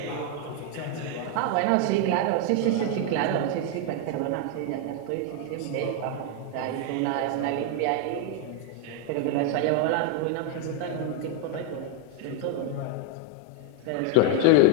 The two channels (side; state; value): both; different; correlation 0.01